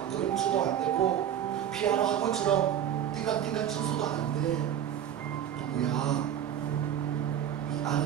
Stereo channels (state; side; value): quieter; left; 10.0 dB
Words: 그림쳐도 안 되고 피아노 학원처럼 띵강띵강 쳐서도 안 돼. 누구야? 이